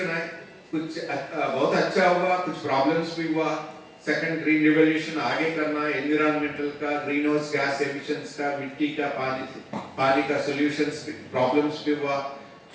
है, कुछ बहुत अच्छा हुआ, कुछ प्रॉब्लम्स भी हुआ। सेकंड ग्रीन रिवॉल्यूशन आगे करना, एनवायरमेंटल का, ग्रीन हाउस गैस एमिशंस का, मिट्टी का, पानी का सॉल्यूशंस प्रॉब्लम्स भी हुआ।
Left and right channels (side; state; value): both; identical; correlation 1.00